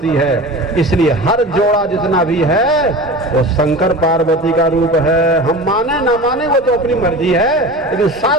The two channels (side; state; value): both; normal; correlation 0.33